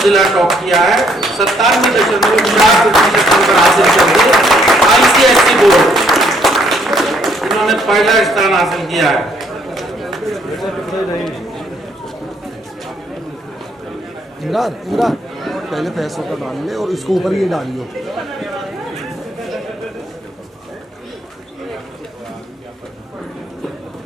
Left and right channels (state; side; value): normal; both; correlation 0.68